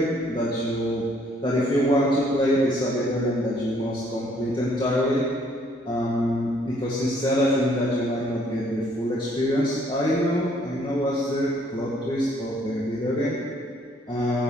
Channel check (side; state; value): both; normal; correlation 0.64